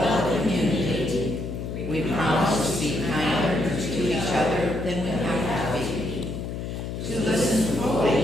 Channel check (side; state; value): left; noise; hum, 6 dB below the sound